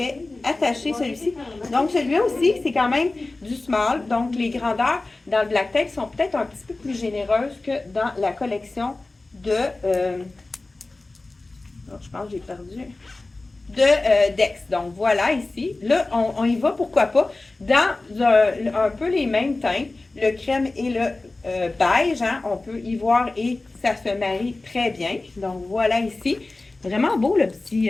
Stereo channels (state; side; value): quieter; right; 3.2 dB